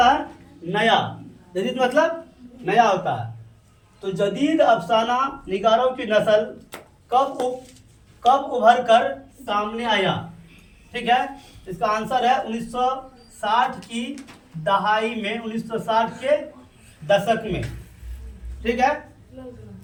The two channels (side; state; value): both; identical; correlation 1.00